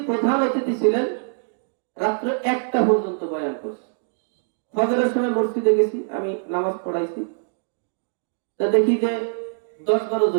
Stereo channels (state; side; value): silent; left; digital silence